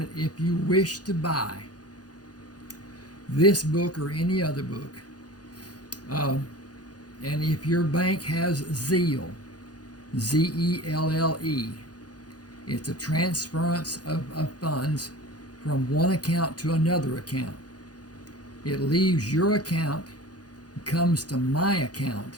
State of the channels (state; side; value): late; right; 0.69 ms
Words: if you wish to buy this book or any other book, and if your bank has Zelle, Z-E-L-L-E, it's a transference of funds from one account to another account. It leaves your account, comes to my account.